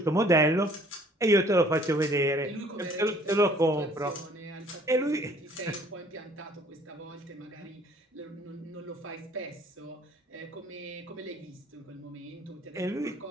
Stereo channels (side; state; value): both; normal; correlation 0.57